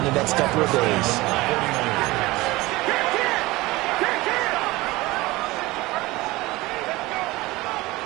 the next couple of days.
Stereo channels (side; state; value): left; quieter; 20.3 dB